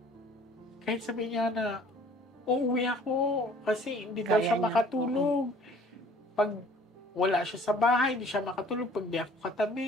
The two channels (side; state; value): both; normal; correlation 0.53